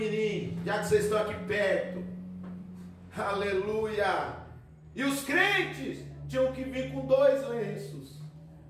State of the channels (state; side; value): identical; both; correlation 1.00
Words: já que vocês estão aqui perto. Aleluia! E os crentes tinham que vir com 2 lenços,